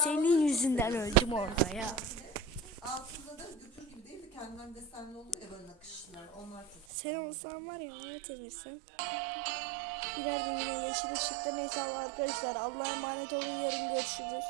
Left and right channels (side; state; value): left; drops out; at 6.9 s